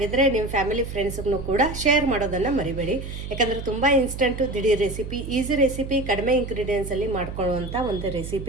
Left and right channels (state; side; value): noise; right; hum, 8 dB below the sound